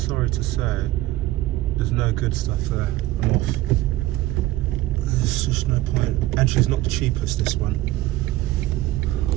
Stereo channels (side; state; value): left; quieter; 16.4 dB